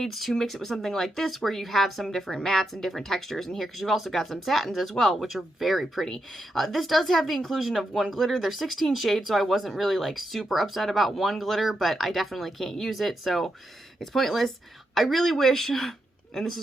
to mix it with something like this where you have some different mattes and different textures in here, because you've also got some satins as well, which are very pretty. This does have the inclusion of 1 glitter. There's 16 shades, so I wasn't really like super upset about 1 glitter, but I definitely can't use it, so it's pointless. I really wish, and this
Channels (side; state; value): both; normal; correlation 0.84